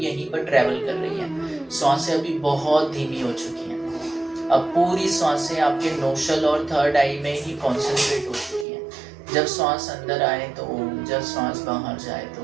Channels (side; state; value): left; drops out; at 8.7 s